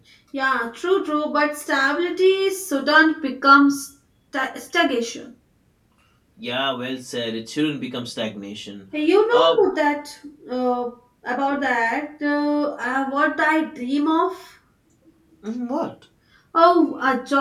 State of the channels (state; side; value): identical; both; correlation 1.00